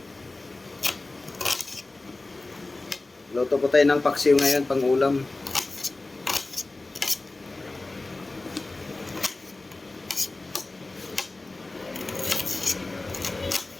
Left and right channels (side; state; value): right; quieter; 3.2 dB